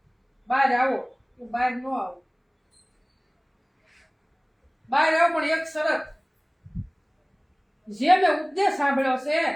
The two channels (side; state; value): both; identical; correlation 1.00